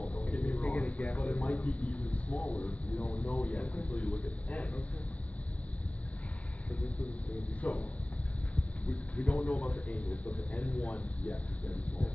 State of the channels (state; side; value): late; right; 0.066 ms